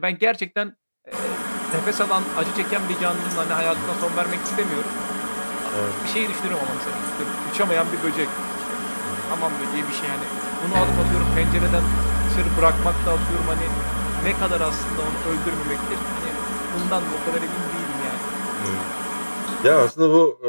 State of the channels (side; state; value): both; inverted; correlation -1.00